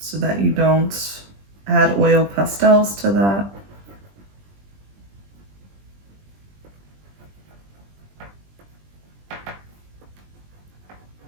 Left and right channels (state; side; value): late; left; 20 ms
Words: that you don't add oil pastels to that.